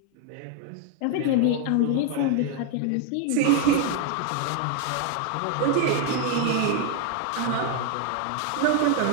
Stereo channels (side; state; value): both; different; correlation 0.01